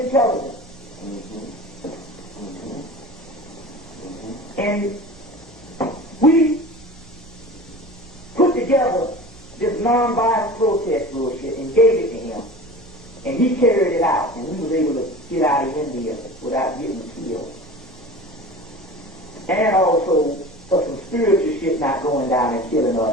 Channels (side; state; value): both; normal; correlation 0.37